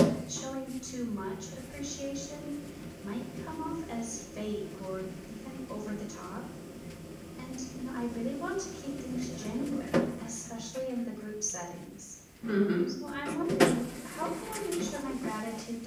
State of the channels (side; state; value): both; identical; correlation 1.00